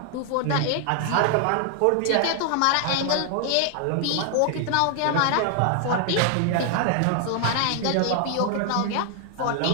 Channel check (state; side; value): different; both; correlation 0.00